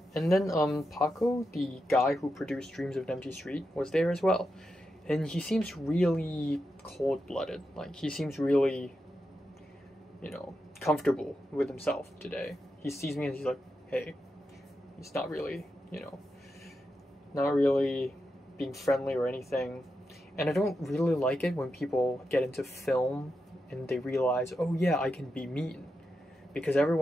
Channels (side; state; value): both; normal; correlation 0.87